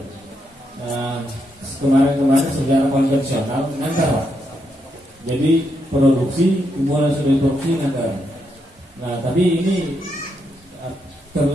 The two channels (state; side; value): normal; both; correlation 0.80